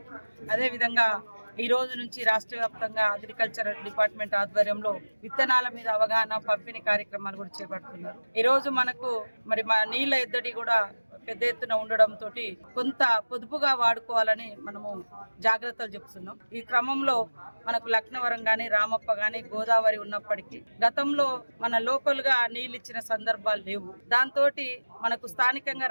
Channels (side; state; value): both; inverted; correlation -1.00